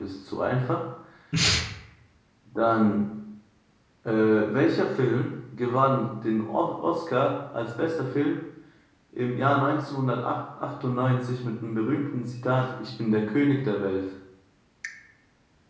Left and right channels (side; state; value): both; identical; correlation 1.00